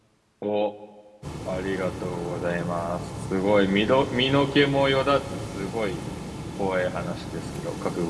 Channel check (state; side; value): identical; both; correlation 1.00